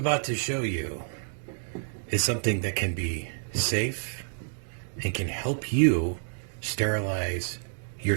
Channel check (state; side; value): silent; left; digital silence